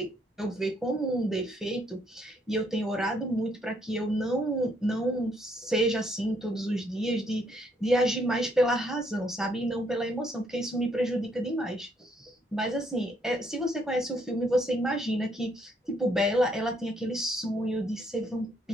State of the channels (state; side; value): normal; both; correlation 0.70